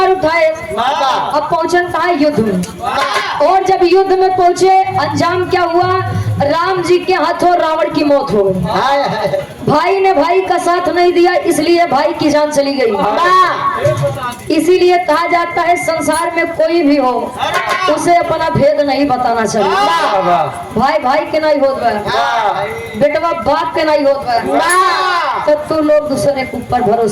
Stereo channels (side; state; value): both; identical; correlation 1.00